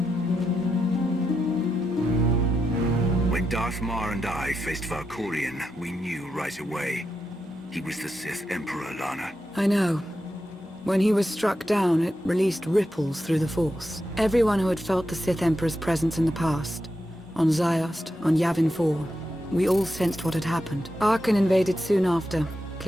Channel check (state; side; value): normal; both; correlation 0.86